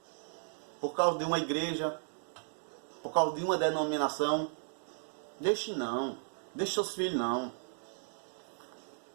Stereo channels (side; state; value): left; silent; digital silence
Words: por causa de uma igreja, por causa de uma denominação. Deixe seus filhos não.